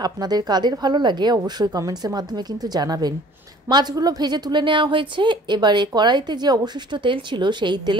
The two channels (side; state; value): both; normal; correlation 0.51